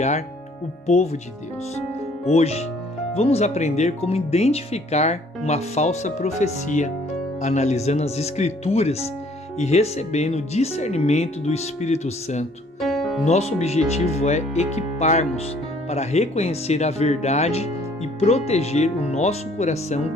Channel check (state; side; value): normal; both; correlation 0.59